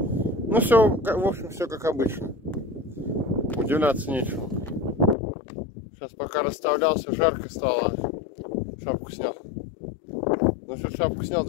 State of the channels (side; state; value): right; drops out; at 5.2 s